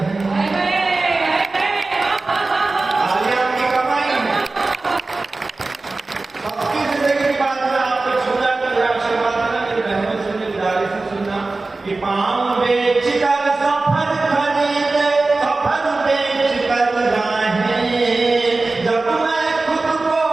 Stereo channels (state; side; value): quieter; left; 3.4 dB